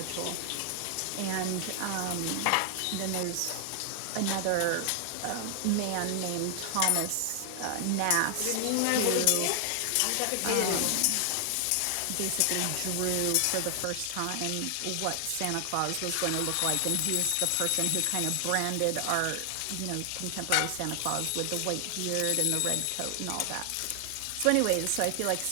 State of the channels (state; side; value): different; both; correlation 0.00